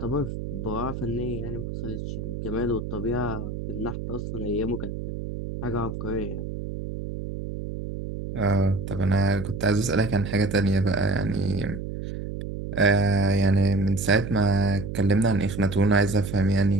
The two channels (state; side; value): noise; right; hum, 7 dB below the sound